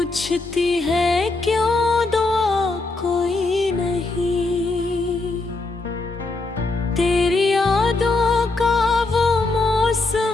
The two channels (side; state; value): right; quieter; 3.3 dB